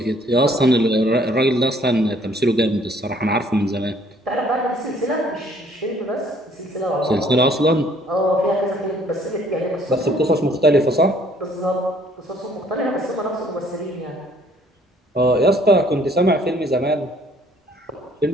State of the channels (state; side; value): normal; both; correlation 0.60